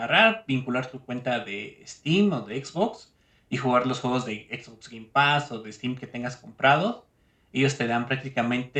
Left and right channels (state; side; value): identical; both; correlation 1.00